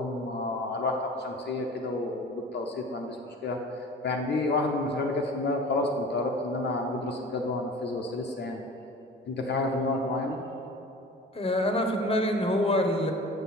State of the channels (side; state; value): both; normal; correlation 0.40